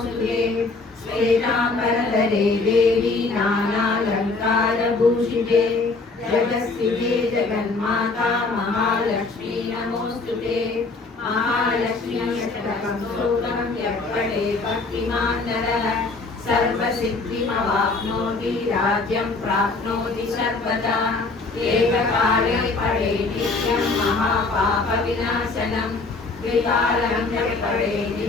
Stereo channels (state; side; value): quieter; right; 3.7 dB